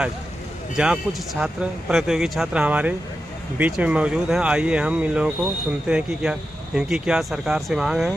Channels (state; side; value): normal; both; correlation 0.90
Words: जहां कुछ छात्र प्रतियोगी छात्र हमारे बीच में मौजूद हैं। आइए हम इन लोगों को सुनते हैं कि इनकी क्या सरकार से मांग है।